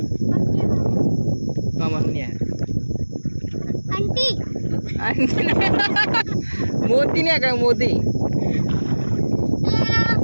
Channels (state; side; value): inverted; both; correlation -1.00